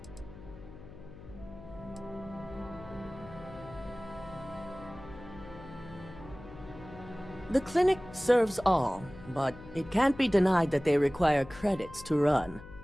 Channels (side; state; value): left; noise; hum, 16 dB below the sound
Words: The clinic serves all, but it can't be denied that they require credits to run.